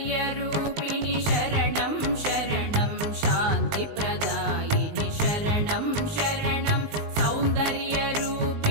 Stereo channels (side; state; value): left; late; 19 ms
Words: शरणं शरणं शान्तिप्रदायिनि शरणं शरणं